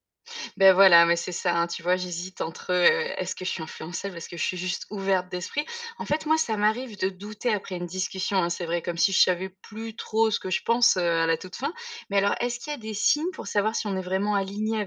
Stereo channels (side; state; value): both; identical; correlation 1.00